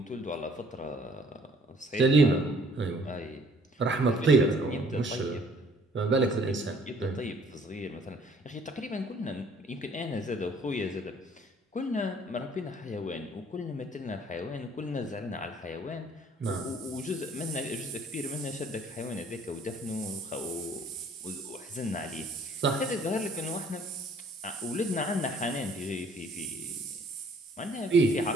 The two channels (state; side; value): normal; both; correlation 0.58